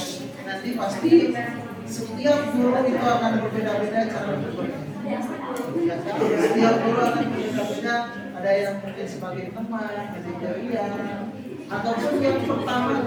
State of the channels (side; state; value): both; identical; correlation 1.00